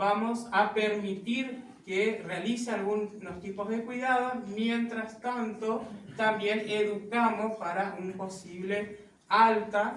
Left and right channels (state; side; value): identical; both; correlation 1.00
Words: a permitir que realice algunos tipos de cuidados. Mientras tanto, también educamos para un posible